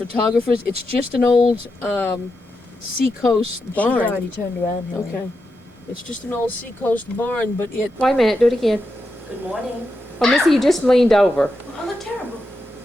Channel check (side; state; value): both; normal; correlation 0.87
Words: It's just an old seacoast She's barn. already turned around here. Okay. It's just an old seacoast barn, but it. Wait a minute, do it again. Good morning. Oh, Missy, you just leaned over. I look terrible.